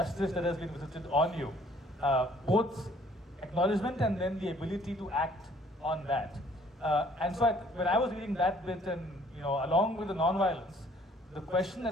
that has been visited on you, both acknowledgement and then the ability to act on that. And so when I was reading that bit and, along with the non-violence, the question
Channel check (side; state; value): both; normal; correlation 0.59